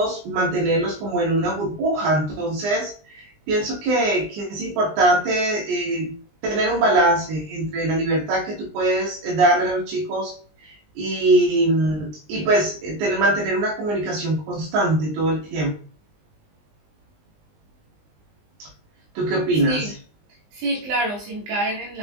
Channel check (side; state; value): left; late; 20 ms